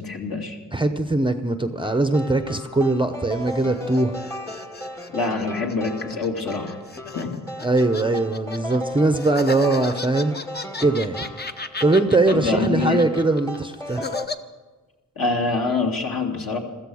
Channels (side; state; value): both; normal; correlation 0.63